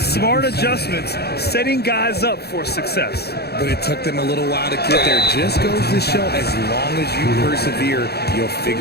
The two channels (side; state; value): right; late; 0.47 ms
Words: adjustments, setting guys up for success. But it took them a little while to get there. Just goes to show, as long as you persevere, you'll